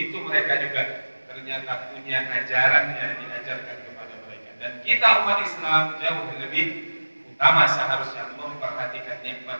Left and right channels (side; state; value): both; inverted; correlation -1.00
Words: mereka juga ternyata punya ajaran yang diajarkan kepada mereka. Dan kita umat Islam jauh lebih utama seharusnya memperhatikan